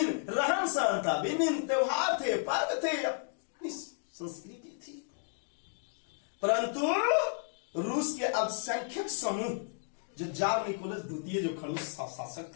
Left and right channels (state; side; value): silent; right; digital silence